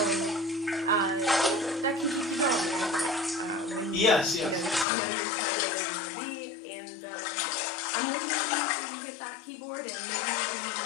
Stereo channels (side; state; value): right; drops out; at 4.9 s